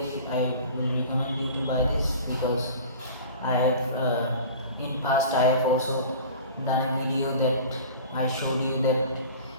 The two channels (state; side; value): inverted; both; correlation -0.40